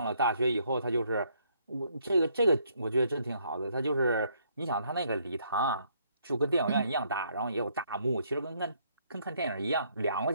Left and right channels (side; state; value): both; inverted; correlation -0.69